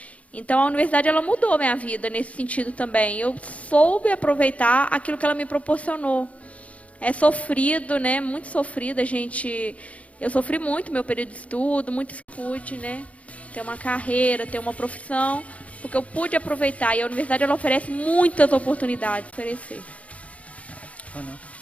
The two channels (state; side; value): late; right; 0.066 ms